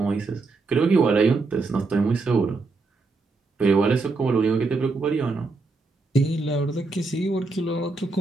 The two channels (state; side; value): quieter; left; 3.8 dB